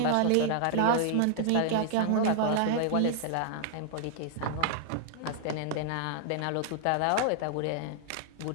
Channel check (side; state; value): both; different; correlation -0.01